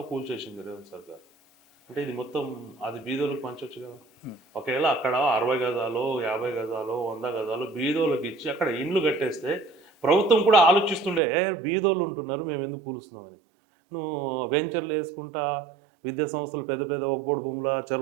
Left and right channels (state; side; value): drops out; left; at 11.2 s